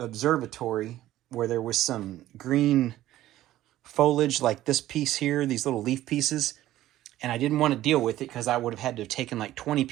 where there was some green foliage like this piece here, these little leaf pieces. And I didn't want to deal with it because I would have had to have taken like 20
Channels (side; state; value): left; quieter; 14.4 dB